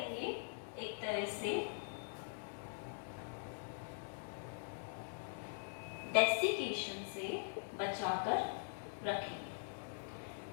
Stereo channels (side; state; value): right; silent; digital silence